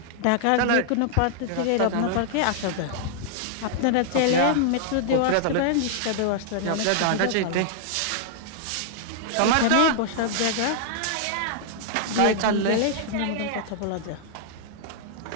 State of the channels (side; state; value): both; different; correlation -0.01